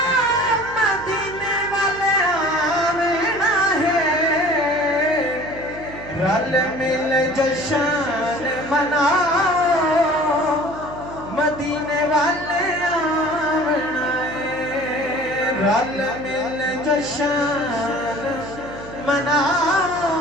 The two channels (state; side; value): noise; right; hum, 15 dB below the sound